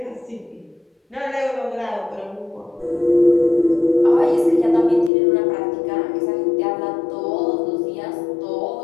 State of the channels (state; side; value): drops out; right; at 5.1 s